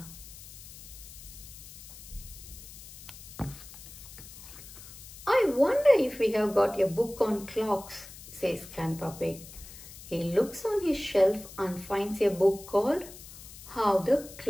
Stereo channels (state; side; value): noise; left; hiss, 16 dB below the sound